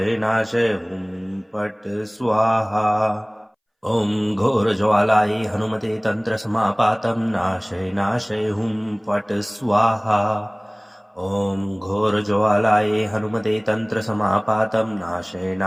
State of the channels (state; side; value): identical; both; correlation 1.00